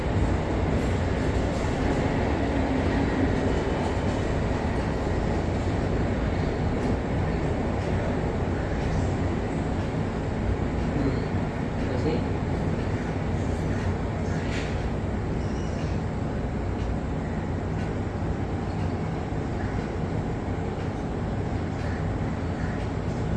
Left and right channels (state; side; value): identical; both; correlation 1.00